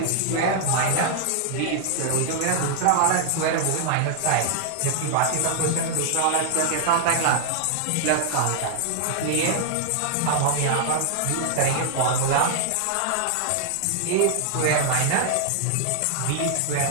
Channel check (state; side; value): different; both; correlation 0.00